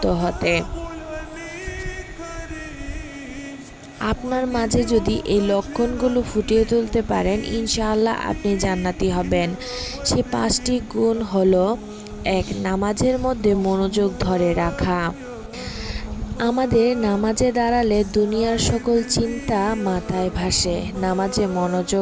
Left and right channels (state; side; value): identical; both; correlation 1.00